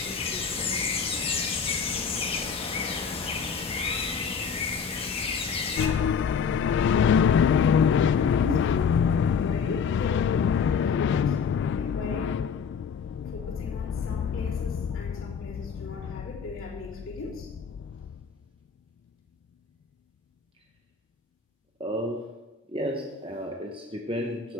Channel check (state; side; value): quieter; right; 6.2 dB